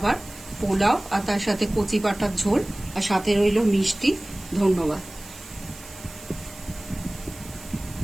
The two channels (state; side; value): noise; right; hiss, 18 dB below the sound